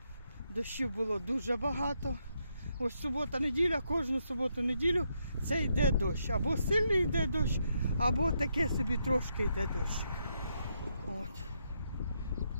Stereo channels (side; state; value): both; inverted; correlation -0.78